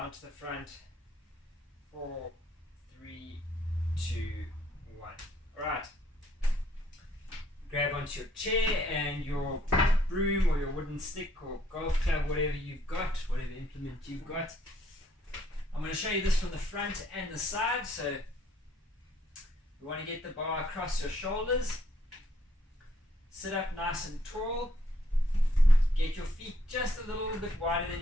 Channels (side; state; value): both; normal; correlation 0.67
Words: to the front. 4, 3, 2, 1. Alright. Grab onto your chair and your broom or your wooden stick or golf club, whatever you've got, whatever implement you've got. I'm going to show you this from the front and the side. So you want to get the bar across your shoulders. Sit up nice and tall. Get your feet just a little bit wider than